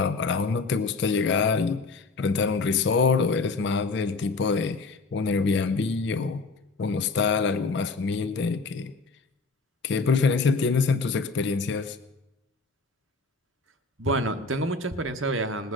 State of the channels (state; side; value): quieter; right; 3.9 dB